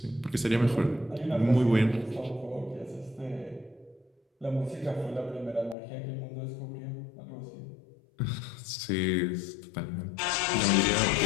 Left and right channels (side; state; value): right; drops out; at 5.8 s